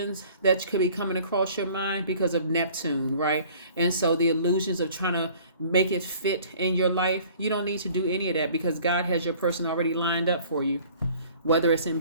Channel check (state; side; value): inverted; both; correlation -0.51